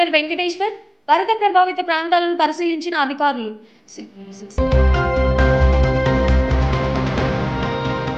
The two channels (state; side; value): identical; both; correlation 1.00